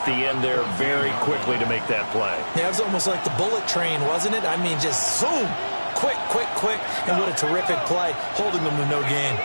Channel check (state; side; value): inverted; both; correlation -1.00